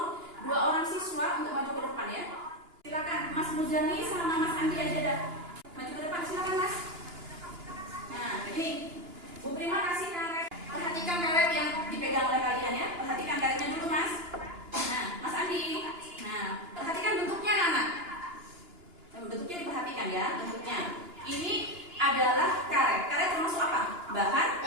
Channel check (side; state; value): left; late; 2.9 ms